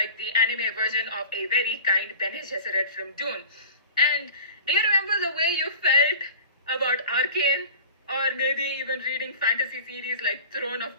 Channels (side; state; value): both; inverted; correlation -0.39